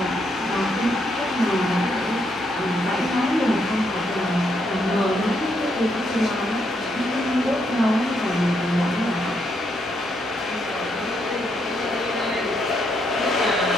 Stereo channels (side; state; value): both; normal; correlation 0.76